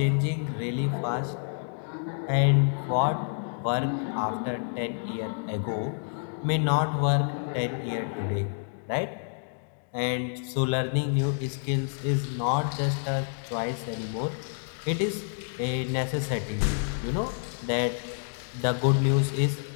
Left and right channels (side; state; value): right; silent; digital silence